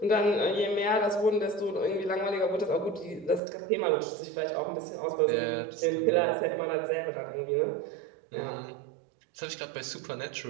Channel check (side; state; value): left; drops out; at 3.4 s